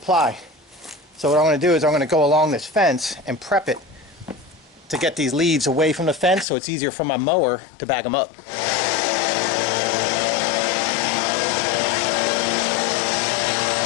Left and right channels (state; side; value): drops out; right; at 6.5 s